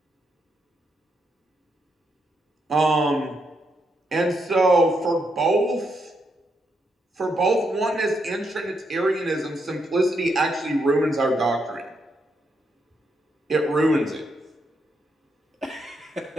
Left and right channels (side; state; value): both; normal; correlation 0.79